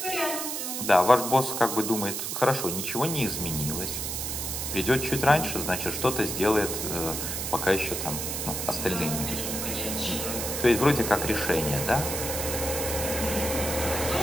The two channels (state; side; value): noise; right; hiss, 3 dB below the sound